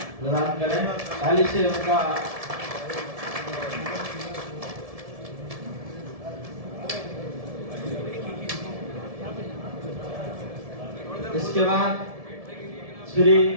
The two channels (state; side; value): late; left; 1.7 ms